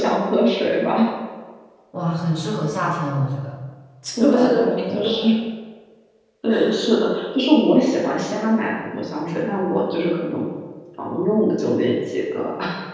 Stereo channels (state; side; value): identical; both; correlation 1.00